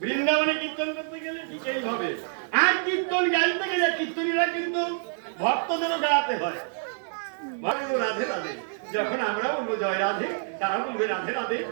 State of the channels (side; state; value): left; silent; 60 dB below the other